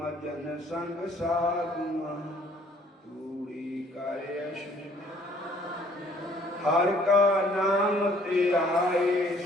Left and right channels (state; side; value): normal; both; correlation 0.60